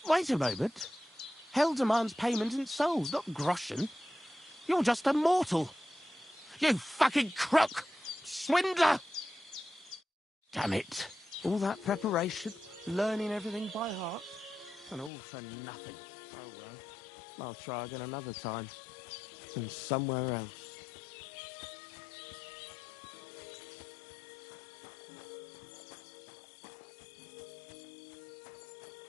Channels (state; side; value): drops out; right; at 15.1 s